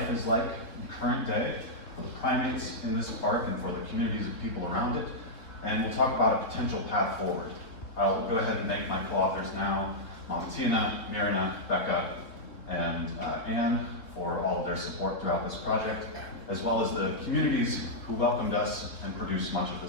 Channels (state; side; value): late; right; 3.8 ms